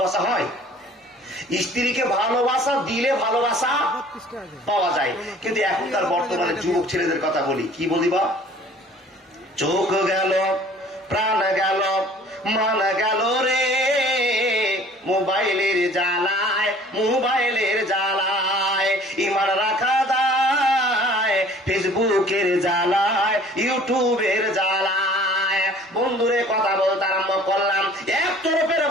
হয়, স্ত্রীকে ভালোবাসা দিলে ভালোবাসা পাওয়া যায়। কিন্তু এখনকার বর্তমানে যুবক ছেলেদের কথা বলি, কি বলিবা? চোখ গেল, প্রাণ গেল, মান গেল রে মোবাইলের জ্বালায়, ইমান রাখা দায় ফেসবুকের জ্বালায়, ইউটিউবের জ্বালায়। বন্ধুরে কথা বলতে আরম্ভ করলাম, এক তরফের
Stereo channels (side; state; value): both; normal; correlation 0.51